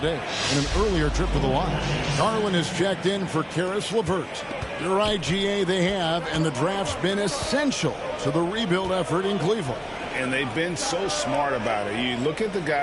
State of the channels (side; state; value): both; identical; correlation 1.00